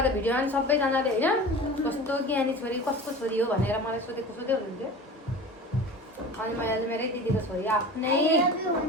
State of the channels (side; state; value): both; normal; correlation 0.35